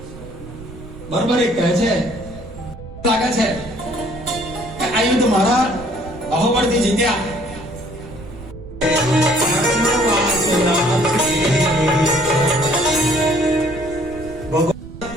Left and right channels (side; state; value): right; noise; rumble, 15 dB below the sound